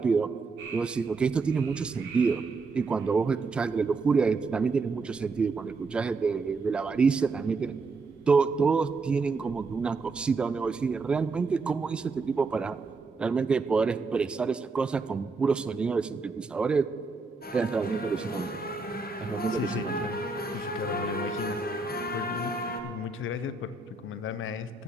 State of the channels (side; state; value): left; quieter; 4.0 dB